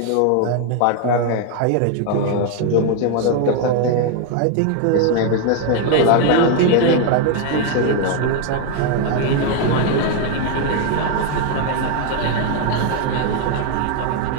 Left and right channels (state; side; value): different; both; correlation 0.01